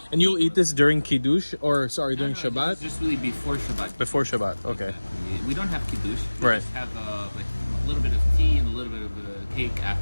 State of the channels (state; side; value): inverted; both; correlation -1.00